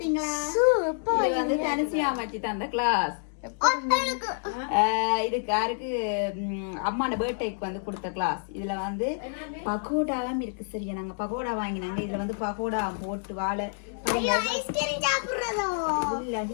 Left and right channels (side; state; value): right; silent; digital silence